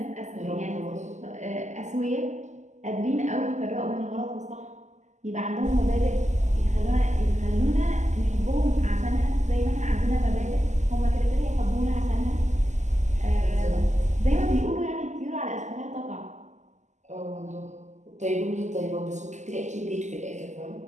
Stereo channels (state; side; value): late; left; 0.34 ms